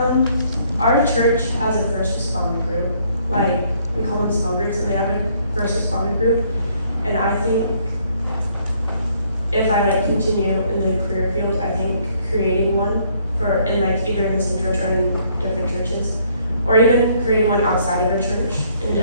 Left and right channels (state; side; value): inverted; both; correlation -0.66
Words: Our church has a first responder group. Like, we call them small groups, and they have a first responder group. And I think if I continue in the career field, I think creating one in either in the same church or in different churches, or even creating one outside of a church, and